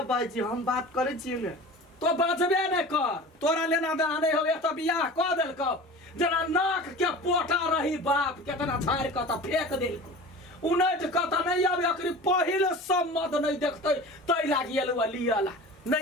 बाजी हम बात करे छियै ने तो बचबे नहीं कर तोरा लेना देना नहीं हो तो बियाह कऽ देलको जना नाक के पोटा रही बाप केतना झाड़ के तो फेंक देलको उनट के तो नहीं आबे अकरी पहिल सम्मत नहीं देखते तै लागी एलुआ लियला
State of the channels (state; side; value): normal; both; correlation 0.37